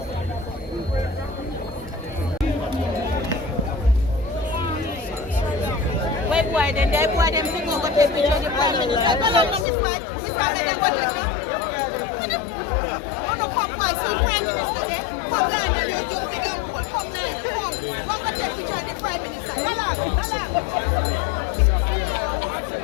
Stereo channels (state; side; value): drops out; right; at 9.7 s